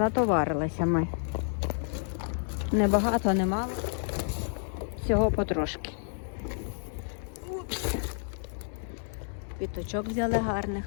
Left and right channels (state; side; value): silent; right; 58 dB below the other